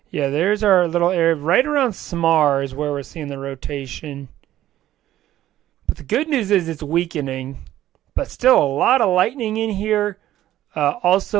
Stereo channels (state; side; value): quieter; left; 13.3 dB